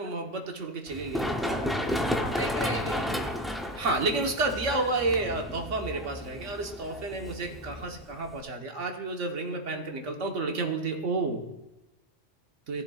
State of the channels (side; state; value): both; normal; correlation 0.12